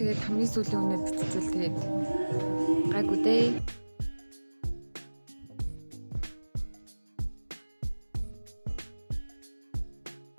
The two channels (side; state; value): both; inverted; correlation -1.00